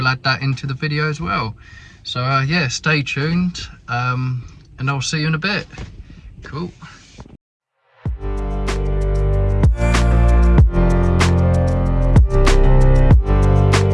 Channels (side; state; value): both; identical; correlation 1.00